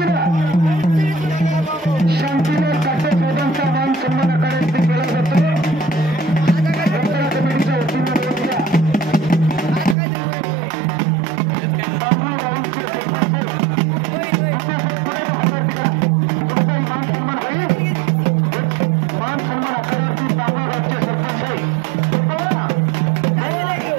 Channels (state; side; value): drops out; left; at 10.0 s